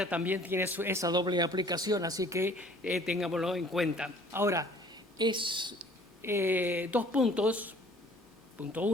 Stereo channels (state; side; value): normal; both; correlation 0.53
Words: también tiene esa doble aplicación, así que tengámoslo en cuenta. Ahora, es dos puntos, punto